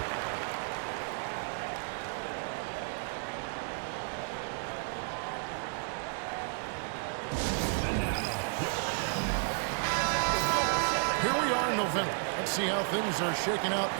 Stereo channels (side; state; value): left; silent; 56 dB below the other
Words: Here we are in November. Let's see how things are shaking out